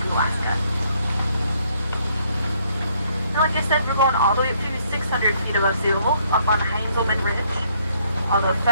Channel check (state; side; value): inverted; both; correlation -0.68